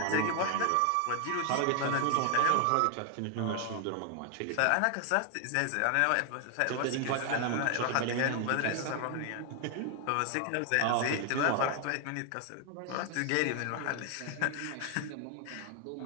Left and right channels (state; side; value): different; both; correlation 0.00